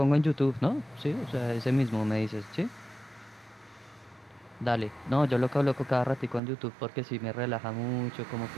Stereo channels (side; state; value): left; drops out; at 6.4 s